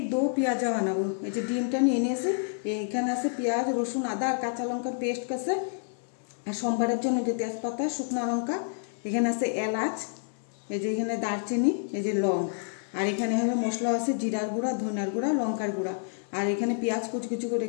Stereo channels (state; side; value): silent; right; digital silence